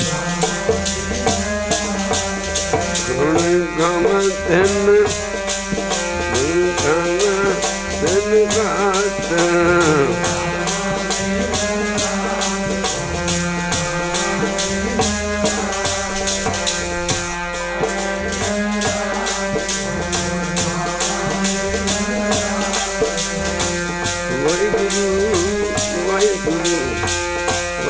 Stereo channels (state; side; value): identical; both; correlation 1.00